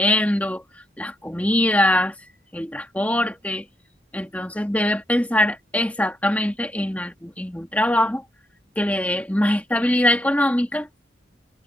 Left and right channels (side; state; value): both; normal; correlation 0.79